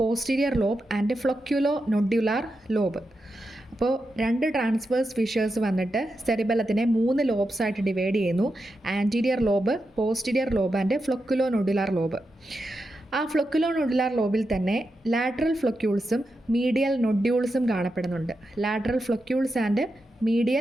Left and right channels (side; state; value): both; normal; correlation 0.88